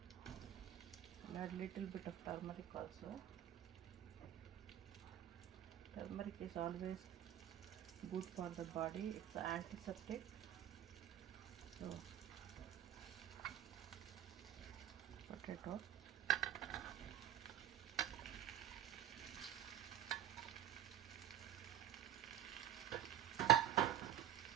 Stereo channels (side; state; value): left; quieter; 11.0 dB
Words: We'll add little bit of turmeric also. Turmeric is always good for the body, it's an antiseptic. So potato,